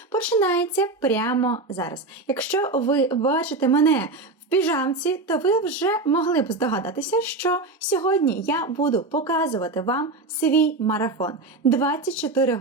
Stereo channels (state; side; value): quieter; left; 3.3 dB